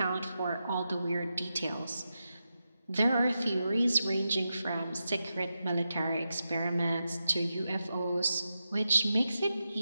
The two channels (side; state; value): both; inverted; correlation -0.88